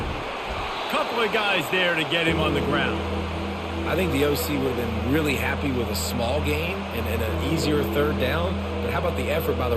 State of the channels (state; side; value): identical; both; correlation 1.00